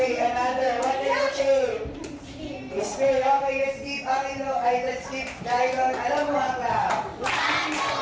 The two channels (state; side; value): identical; both; correlation 1.00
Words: another. What is the shape? Sphere. Okay, let's keep Angelo. Let's keep Dylan. Alam mo haka.